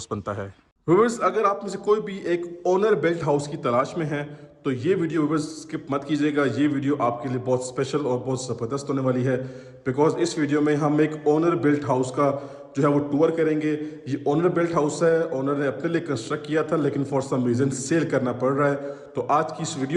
बनता है। व्यूअर्स, अगर आप में से कोई भी एक ओनर बिल्ट हाउस की तलाश में है तो ये वीडियो व्यूअर्स स्किप मत कीजिएगा। ये वीडियो आपके लिए बहुत स्पेशल और बहुत ज़बरदस्त होने वाली है, बिकॉज इस वीडियो में हम एक ओनर बिल्ट हाउस का जो है वो टूर करेंगे। ये ओनर बिल्ट हाउस है, ओनर ने अपने लिए कंस्ट्रक्ट किया था, लेकिन फॉर सम रीज़न सेल करना पड़ रहा है। तो आज की इस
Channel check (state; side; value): identical; both; correlation 1.00